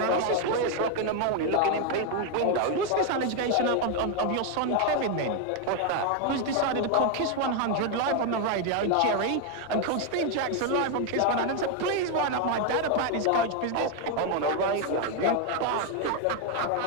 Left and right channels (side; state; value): both; different; correlation 0.01